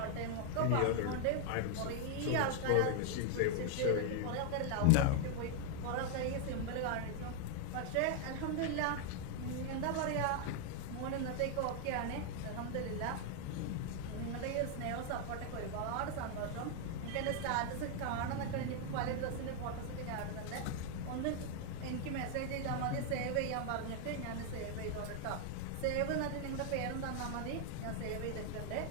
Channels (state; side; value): different; both; correlation 0.00